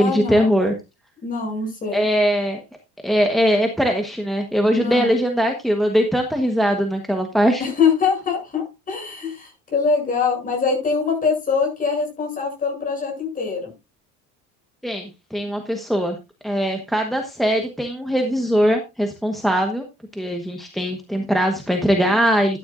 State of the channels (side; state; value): both; normal; correlation 0.70